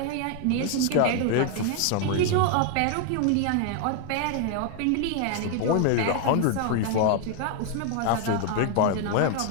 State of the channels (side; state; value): both; different; correlation 0.00